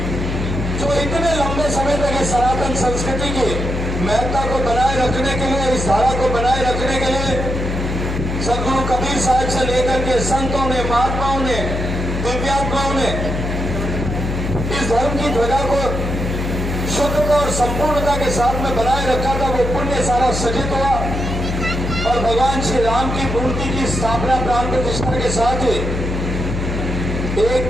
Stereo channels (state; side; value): noise; left; hum, 3 dB below the sound